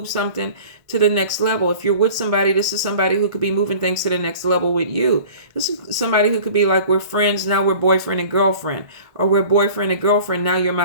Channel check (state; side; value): late; left; 1.6 ms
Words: something to the next level. If you're with somebody, this is somebody who could be moving things to the next level with you. This is somebody who could be like, we're friends, now we're boyfriend and girlfriend, or we're boyfriend and girlfriend, now you're